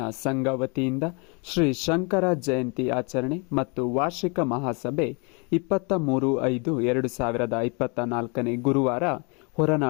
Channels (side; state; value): right; quieter; 32.8 dB